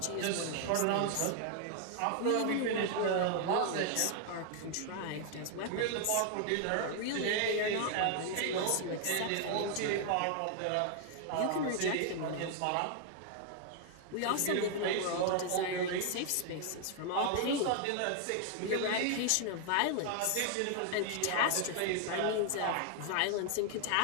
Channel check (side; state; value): both; different; correlation 0.00